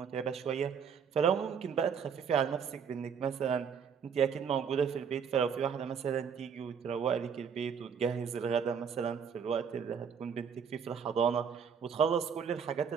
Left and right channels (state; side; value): quieter; left; 6.9 dB